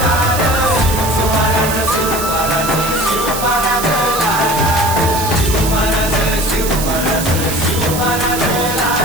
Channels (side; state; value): right; noise; hiss, 6 dB below the sound